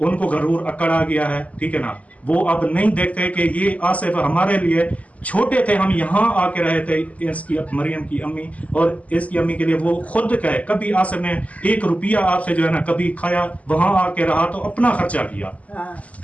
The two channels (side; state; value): right; late; 0.071 ms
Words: गरूर अकड़ आ गया है, ठीक है ना। वो अब नहीं देखते कि ये आसिफ हमारे लिए छोटे थे, हम यहाँ आके रहे थे, इसकी मरियम की अम्मी और इसकी अम्मी के लिए वो खुद कहे, कभी आसिफ ने 1 रुपया आपसे जो है ना कभी खाया, वहां आके रहा तो अपना खर्चा किया,